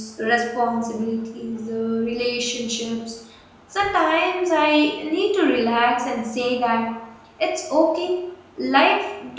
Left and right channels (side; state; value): both; identical; correlation 1.00